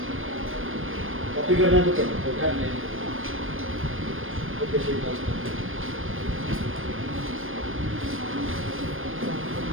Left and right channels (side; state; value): left; late; 0.59 ms